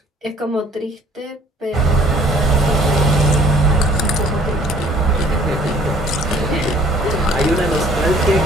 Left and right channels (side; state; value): both; normal; correlation 0.57